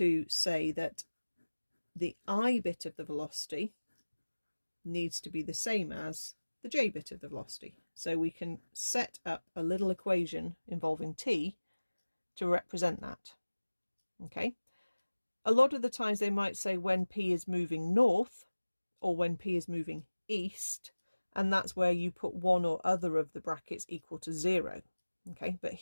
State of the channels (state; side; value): inverted; both; correlation -1.00